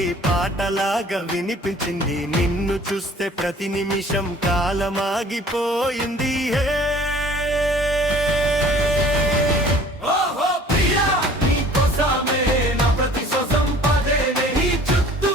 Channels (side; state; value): both; normal; correlation 0.50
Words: పాటలాగా వినిపించింది. నిన్ను చూస్తే ప్రతి నిమిషం కాలమాగిపోయింది.